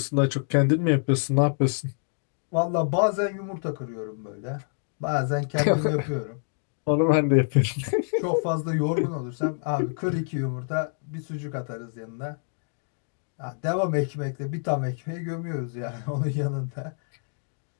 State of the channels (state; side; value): silent; right; digital silence